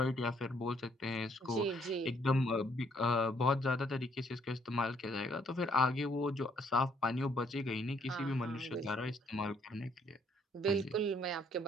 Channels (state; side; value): normal; both; correlation 0.67